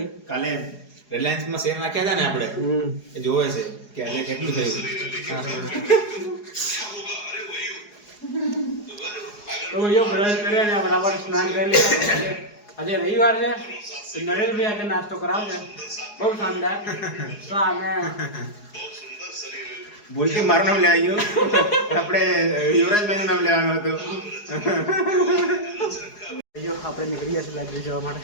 કાલે રિલાયન્સમાં શેર નાખ્યા હતા ને આપણે, એ જોવે છે કે આજે કેટલું થયું. તો ભાઈઓ બ્રશ કર્યા ને બરાબર સ્નાન કરી લીધા. આજે રવિવાર છે તો નરેશભાઈ આજે નાસ્તો કરાવશે બહુ શાનદાર. તો અમે ભૂલથી મારું નામ લેવાઈ ગયું. આપણે યુવરાજભાઈનું નામ લેવાનું હતું. ભાઈઓ આપણે નીકળી ગયા છે લાઇબ્રેરી જવા માટે.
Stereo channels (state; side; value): late; right; 4.8 ms